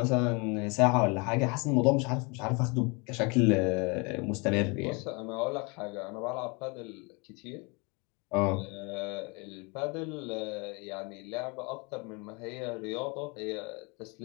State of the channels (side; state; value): right; quieter; 30.1 dB